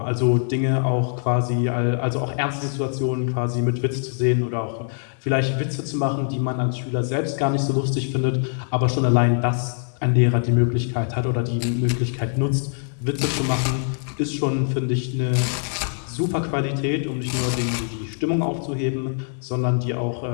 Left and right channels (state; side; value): silent; right; digital silence